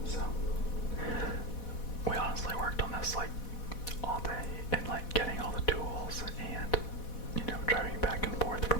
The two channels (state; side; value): late; right; 4.1 ms